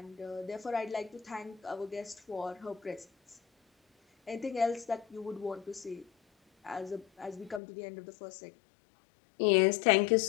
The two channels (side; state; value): right; drops out; at 7.6 s